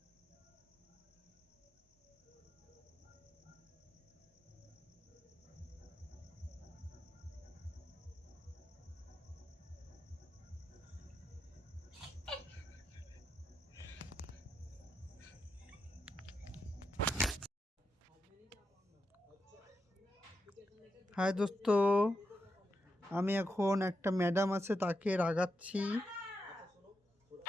হাই দোস্ত, আমি এখন একটা ম্যাডাম আছে তাকে রাগাচ্ছি।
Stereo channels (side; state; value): both; normal; correlation 0.85